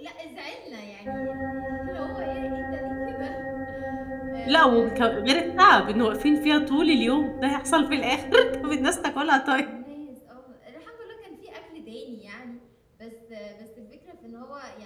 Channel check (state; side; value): identical; both; correlation 1.00